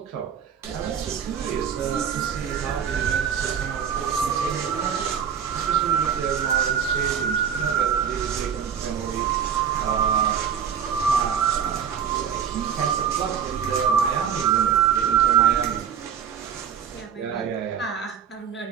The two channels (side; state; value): left; quieter; 7.9 dB